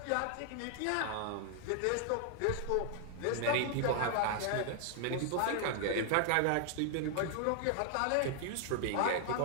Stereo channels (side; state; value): both; different; correlation 0.00